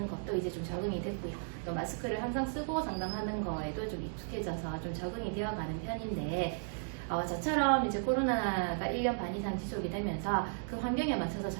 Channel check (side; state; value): left; silent; digital silence